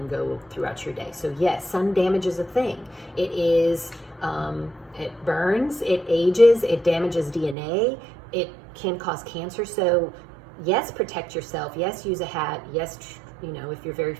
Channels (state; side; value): drops out; left; at 7.6 s